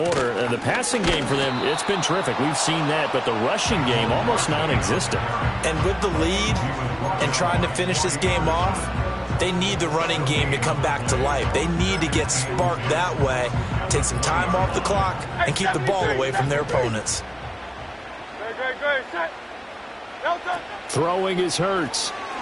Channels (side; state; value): both; identical; correlation 1.00